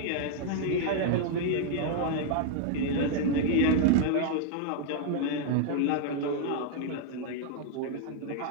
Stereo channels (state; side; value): different; both; correlation 0.00